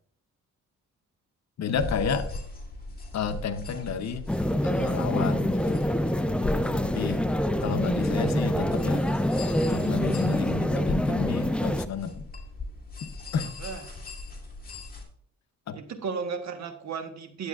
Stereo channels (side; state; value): both; normal; correlation 0.71